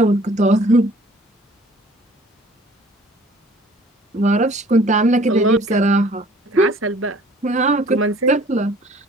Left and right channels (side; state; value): both; normal; correlation 0.53